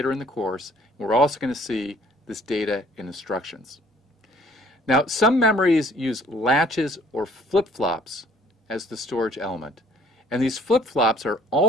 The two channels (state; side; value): normal; both; correlation 0.57